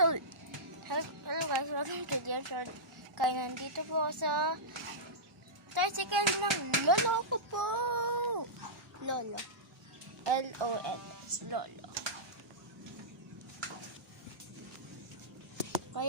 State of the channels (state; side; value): normal; both; correlation -0.14